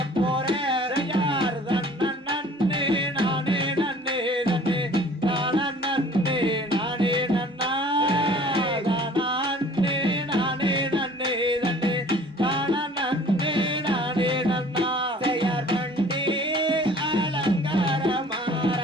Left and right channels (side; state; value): both; normal; correlation 0.50